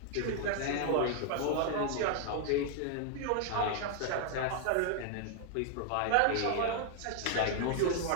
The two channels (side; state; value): both; different; correlation 0.00